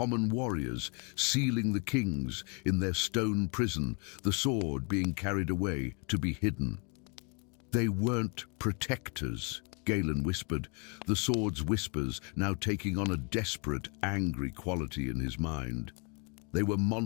warriors sealing the kings in their stone prison, the sword being carried away to be hidden. "They weren't protectors," Galen whispered, the sword's whispers now taking on a desperate, angry quality in his mind. "They were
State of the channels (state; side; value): quieter; right; 35.5 dB